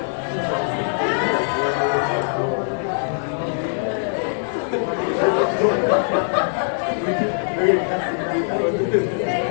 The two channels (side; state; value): right; silent; 64 dB below the other